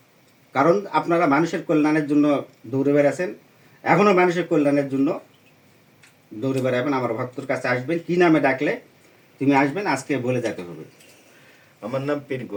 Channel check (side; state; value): both; identical; correlation 1.00